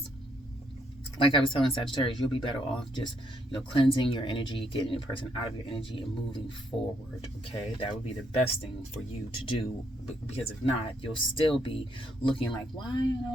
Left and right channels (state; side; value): normal; both; correlation 0.73